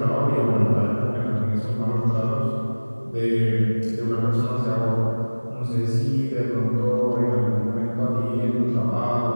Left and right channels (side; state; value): both; inverted; correlation -1.00